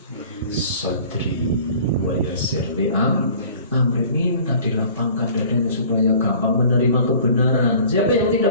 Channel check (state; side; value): inverted; both; correlation -0.48